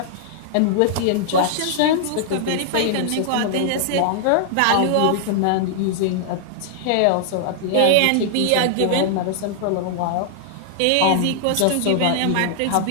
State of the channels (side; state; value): both; different; correlation -0.01